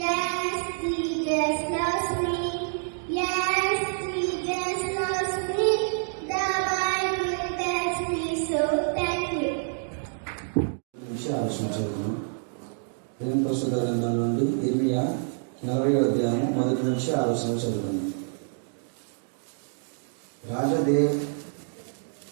దేవుని పరిశుద్ధ గ్రంథం నుండి ఇర్మియా 40వ అధ్యాయం 1 నుంచి 6 చదువుకుందాం.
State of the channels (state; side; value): silent; left; digital silence